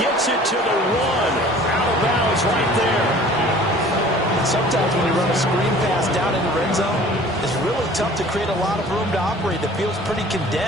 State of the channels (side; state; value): both; normal; correlation 0.48